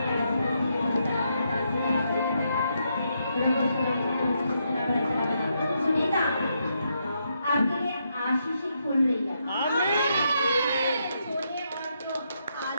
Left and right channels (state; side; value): inverted; both; correlation -0.79